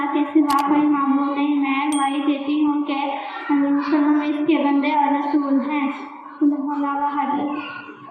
کے سوا کوئی معبود نہیں۔ میں گواہی دیتی ہوں کہ وسلم اس کے بندے اور رسول ہیں۔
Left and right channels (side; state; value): both; identical; correlation 1.00